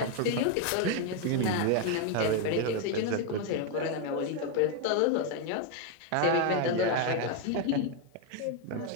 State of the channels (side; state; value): both; different; correlation 0.01